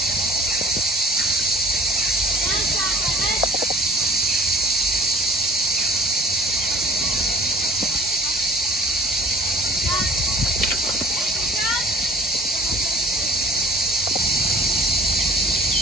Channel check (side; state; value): both; normal; correlation 0.49